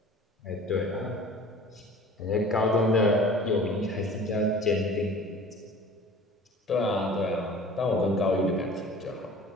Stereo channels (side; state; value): both; normal; correlation 0.44